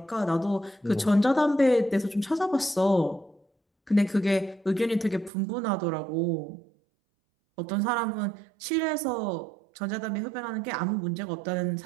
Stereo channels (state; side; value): drops out; left; at 5.3 s